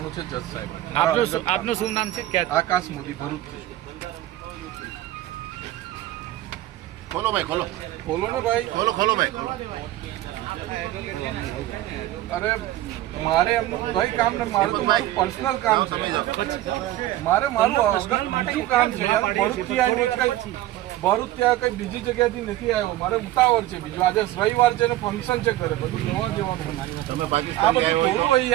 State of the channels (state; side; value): quieter; left; 15.1 dB